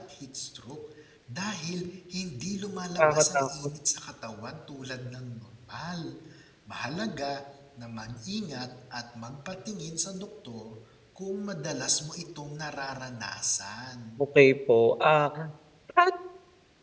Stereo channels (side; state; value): both; identical; correlation 1.00